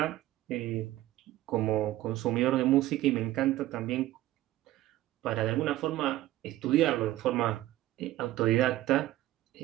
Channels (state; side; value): quieter; left; 15.5 dB